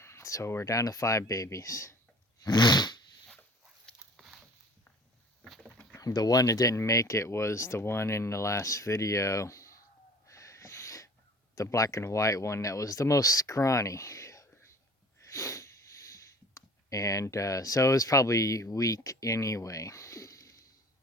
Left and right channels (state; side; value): normal; both; correlation 0.47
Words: So we're down to 5 babies. The one that didn't make it was the one in the last video. The black and white one that was the most scrawny. And so it was probably weak anyway.